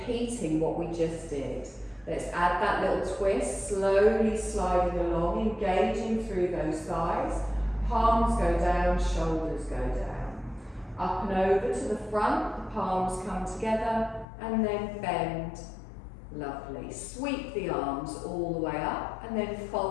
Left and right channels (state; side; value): drops out; right; at 14.2 s